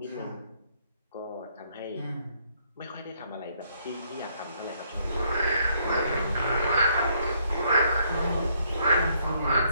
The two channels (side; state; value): both; inverted; correlation -0.70